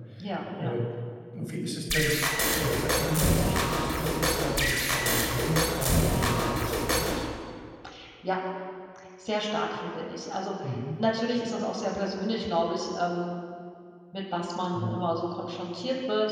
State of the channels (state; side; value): identical; both; correlation 1.00